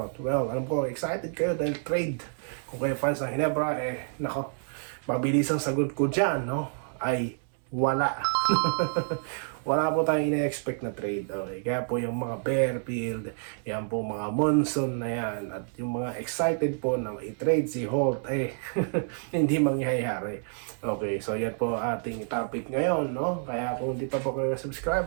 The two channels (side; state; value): left; silent; digital silence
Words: Well, alam ko, excited kayo dahil trade. Kung kayo fans ng Ginebra, nako, mabilis ang sagot ko dyan, no? Ay, wala. Wala po tayong ina-expect na trade. Okay? Kaya po yung mga Bearfield, yan po mga Monson na yan, at yung mga excited po na i-trade si Holt, hindi mangyayari. Okay, so yan po ating topic ngayon, no? Kaya kung hindi pa po kayo